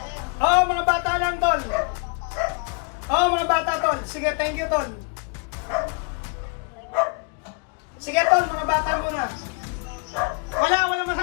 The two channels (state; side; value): quieter; right; 33.8 dB